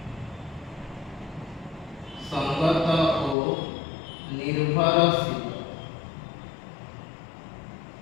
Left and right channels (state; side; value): drops out; right; at 3.4 s